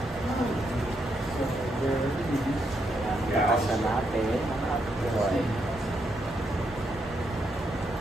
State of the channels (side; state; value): both; normal; correlation 0.79